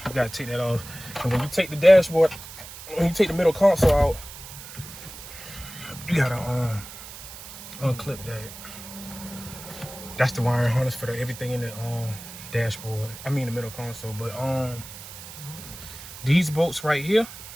you gotta take that off. And when you take the dashboard, when you take the middle console out, you gotta unclip that. That's the wiring harness for everything in the dashboard. I mean the middle console. But these bolts right here,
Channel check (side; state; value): right; noise; hiss, 14 dB below the sound